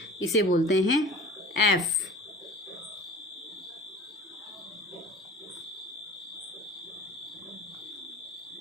इसे बोलते हैं F।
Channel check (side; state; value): both; normal; correlation 0.44